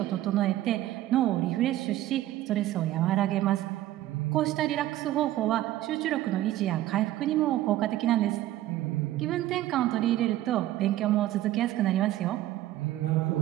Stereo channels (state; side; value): quieter; left; 14.5 dB